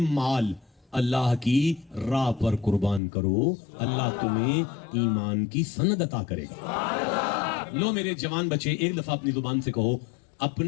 مال اللہ کی راہ پر قربان کرو, اللہ تمہیں ایمان کی سند عطا کرے گا. لو میرے جوان بچے, ایک دفعہ اپنی زبان سے کہو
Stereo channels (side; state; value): right; drops out; at 3.0 s